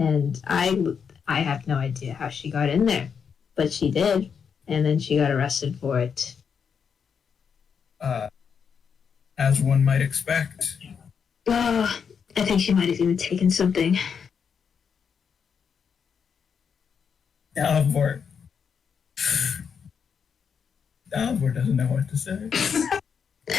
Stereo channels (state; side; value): quieter; right; 6.7 dB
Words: I have no idea how she got in there, but she did, and then she got arrested for it. As one might expect. I think she might have even taken something. Dalibor doesn't know what to say.